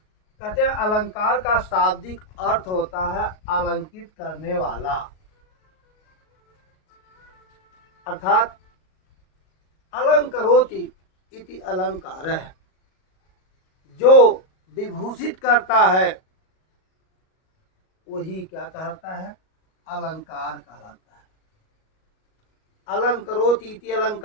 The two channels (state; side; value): late; right; 38 ms